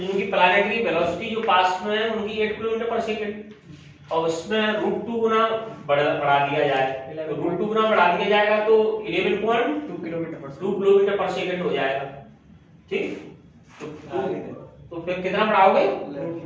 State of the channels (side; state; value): both; identical; correlation 1.00